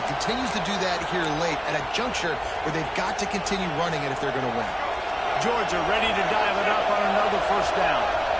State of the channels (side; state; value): both; identical; correlation 1.00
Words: continues to do that here late at a juncture where they've got to continue running it if they're going to win. Georgia ready to dial it up on another first down.